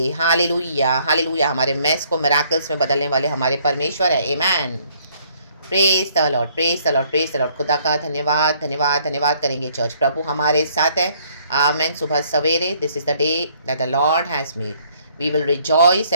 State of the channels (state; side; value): inverted; both; correlation -0.64